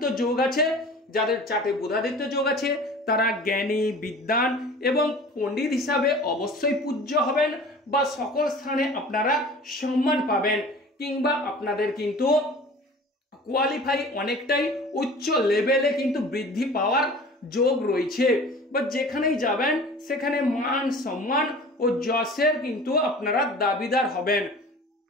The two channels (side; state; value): both; normal; correlation 0.42